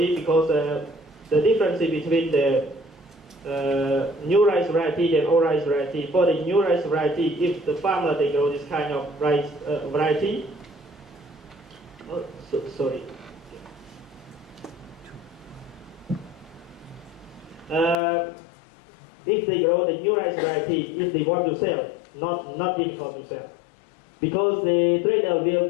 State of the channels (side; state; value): right; drops out; at 17.9 s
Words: because the difference between the new rice variety and old rice variety. For the new rice variety, if the farmer they grow this kind of rice variety, if they grow the new rice variety, if they want to sell, not difficult to sell, because the trader will